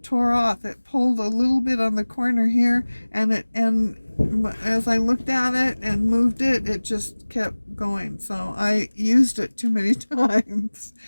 tore off. It pulled a little bit on the corner here, and as I looked at it and moved it, it just kept going. So I used it too many times.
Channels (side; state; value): both; inverted; correlation -1.00